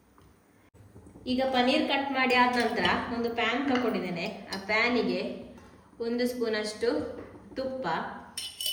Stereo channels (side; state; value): both; identical; correlation 1.00